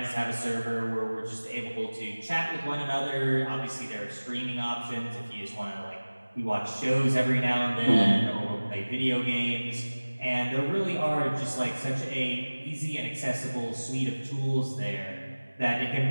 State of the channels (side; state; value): both; inverted; correlation -1.00